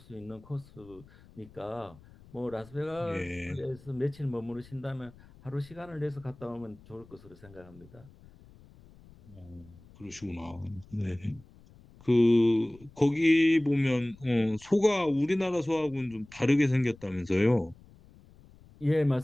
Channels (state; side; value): noise; left; rumble, 24 dB below the sound